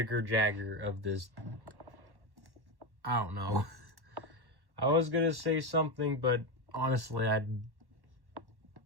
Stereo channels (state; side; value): late; left; 1.1 ms